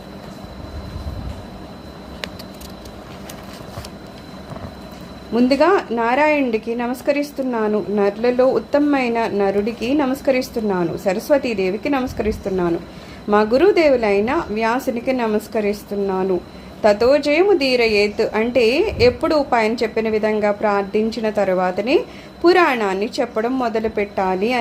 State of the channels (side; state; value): both; identical; correlation 1.00